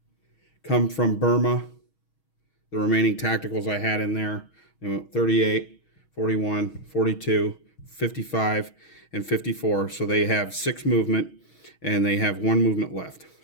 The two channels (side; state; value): right; late; 6.3 ms